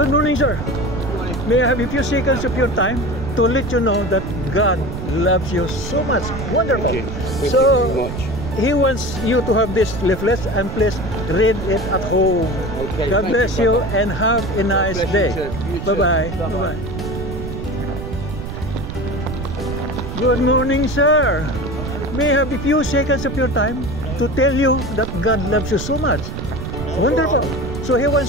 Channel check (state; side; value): noise; right; rumble, 7 dB below the sound